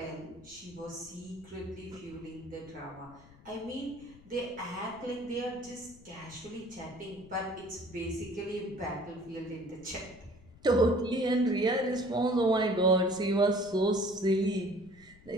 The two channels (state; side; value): noise; left; rumble, 23 dB below the sound